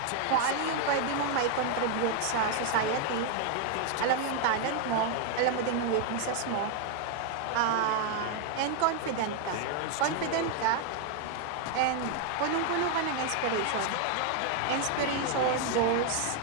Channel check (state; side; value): different; both; correlation 0.00